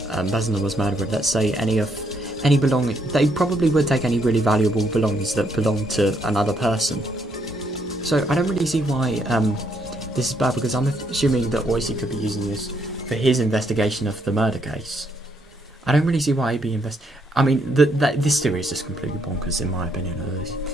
person that was murdered. Let's say any belonging. They probably would take any really valuable belongings that belong to another person. So I don't really see why this is bad, because I'm assuming that Oishi could be using this for his investigation of the murder case. I don't really see why he'd be I mean, this theory is just completely bonkers in my opinion, at least.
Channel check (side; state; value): both; normal; correlation 0.73